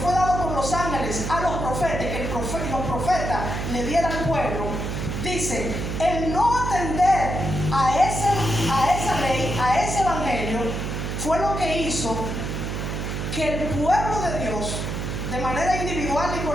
fue dado por los ángeles a los profetas, que los profetas le dieran al pueblo, dice, el no atender a esa ley, a ese evangelio, fue lo que hizo que el pueblo de Dios, de manera individual y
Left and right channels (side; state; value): right; noise; hum, 3 dB below the sound